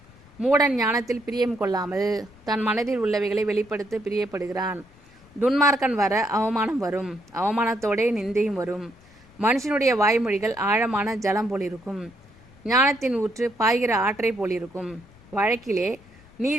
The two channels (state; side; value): noise; left; rumble, 26 dB below the sound